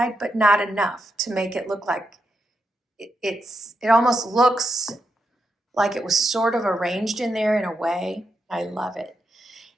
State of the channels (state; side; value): normal; both; correlation 0.84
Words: but not enough to make it look like it almost looks like it was sort of arranged in there in a way. I love it.